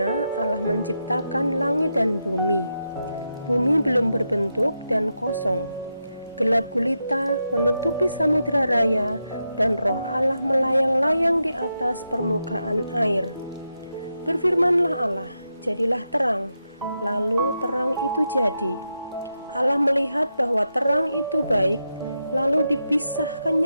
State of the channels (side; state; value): both; inverted; correlation -0.86